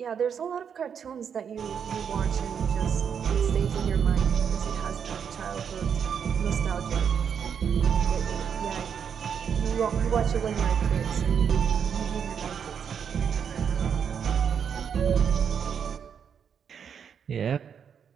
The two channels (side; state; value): left; quieter; 7.5 dB